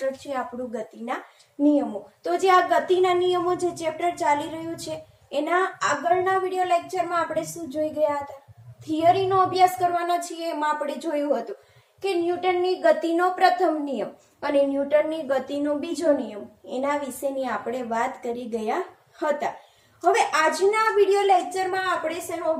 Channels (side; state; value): both; identical; correlation 1.00